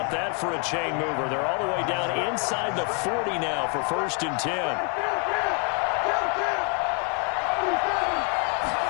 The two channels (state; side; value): quieter; right; 36.1 dB